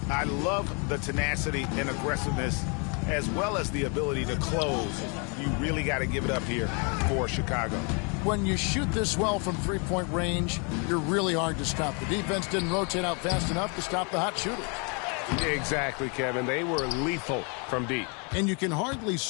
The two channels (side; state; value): right; quieter; 34.9 dB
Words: love the tenacity and aggressiveness as well as the ability to close. You really got to give it up here for Chicago. When you shoot this well from three-point range, you're really hard to stop. The defense didn't rotate out fast enough to stop the hot shooters. Exactly, Kevin. They were lethal from deep. And you can hardly